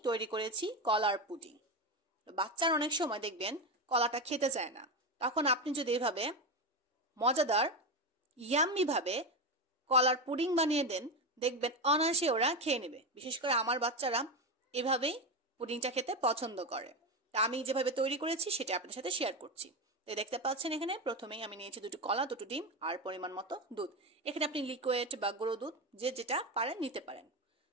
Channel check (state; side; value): normal; both; correlation 0.15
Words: তৈরি করেছি কলার পুডিং। বাচ্চারা অনেক সময় দেখবেন কলাটা খেতে চায় না, তখন আপনি যদি এভাবে মজাদার ইয়াম্মি ভাবে কলার পুডিং বানিয়ে দেন, দেখবেন অনায়াসে ওরা খেয়ে নেবে। বিশেষ করে আমার বাচ্চারা এভাবেই পুডিংটা খেতে পছন্দ করে। তা আমি যেভাবে তৈরি করেছি সেটা আপনাদের সাথে শেয়ার করছি। তো দেখতে পাচ্ছেন এখানে প্রথমেই আমি নিয়েছি দুটো কলা, দুটো ডিম আর পরিমাণ মতো দুধ। এখানে আপনি লিকুইড বা গুঁড়ো দুধ যে যেটা পারেন নিতে পারেন।